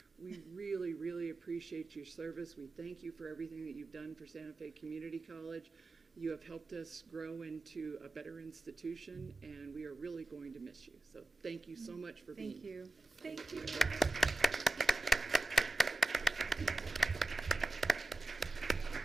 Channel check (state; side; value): normal; both; correlation 0.93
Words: we really, really appreciate your service. We thank you for everything that you've done for Santa Fe Community College. You have helped us grow into a better institution, and we are really going to miss you. So thank you so much for being here. Thank you.